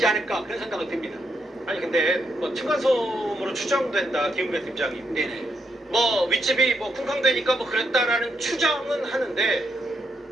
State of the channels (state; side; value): normal; both; correlation 0.79